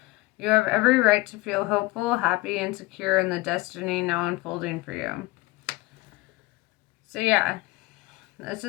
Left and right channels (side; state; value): right; quieter; 21.5 dB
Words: You have every right to feel hopeful, happy, and secure in the destiny now unfolding for you. So yeah, this